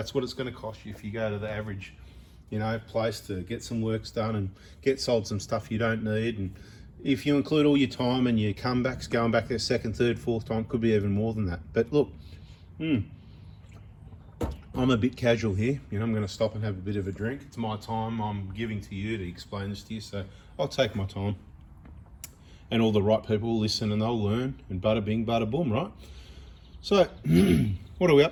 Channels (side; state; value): both; identical; correlation 1.00